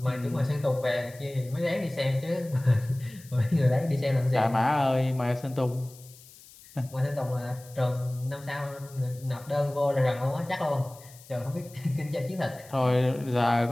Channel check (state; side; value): noise; left; hiss, 22 dB below the sound